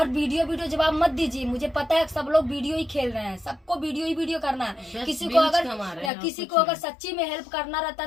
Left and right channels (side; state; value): right; drops out; at 6.1 s